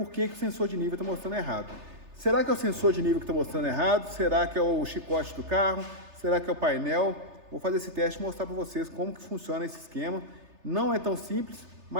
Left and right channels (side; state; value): left; late; 3.3 ms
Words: que o sensor de nível está mostrando errado. Será que é o sensor de nível que está mostrando errado? Será que é o chicote do carro? Será que é o painel? Vou fazer esse teste e mostrar para vocês como que funciona esse esquema. Não é tão simples,